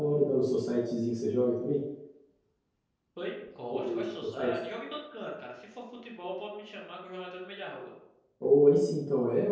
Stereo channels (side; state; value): both; identical; correlation 1.00